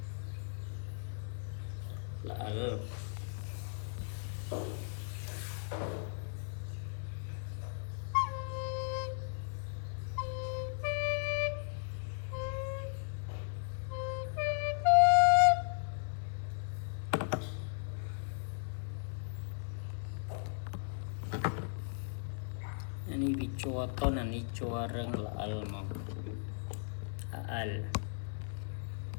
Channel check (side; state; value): right; silent; 53 dB below the other